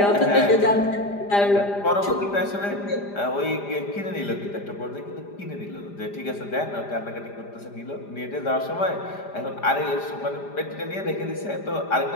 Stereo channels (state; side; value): late; right; 5.0 ms